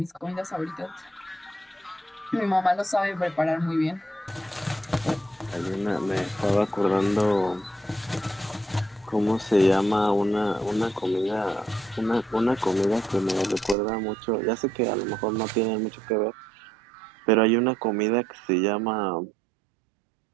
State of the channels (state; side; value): drops out; left; at 13.8 s